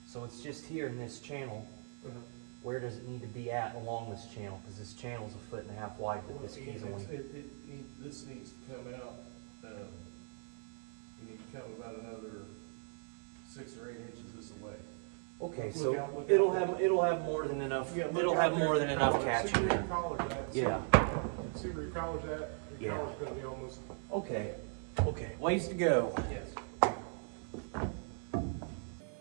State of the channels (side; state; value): left; silent; 52 dB below the other